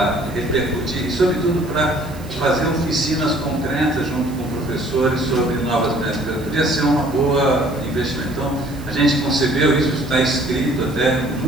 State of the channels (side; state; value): right; noise; hiss, 22 dB below the sound